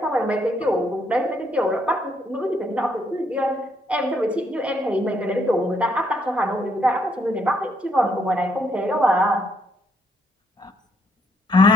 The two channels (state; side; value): normal; both; correlation 0.72